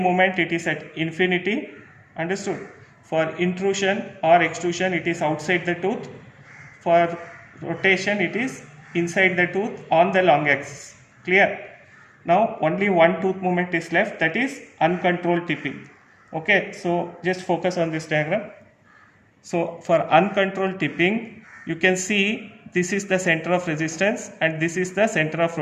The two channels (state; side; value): identical; both; correlation 1.00